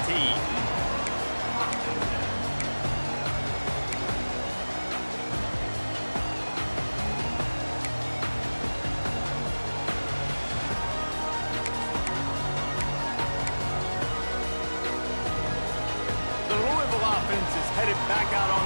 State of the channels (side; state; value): both; inverted; correlation -1.00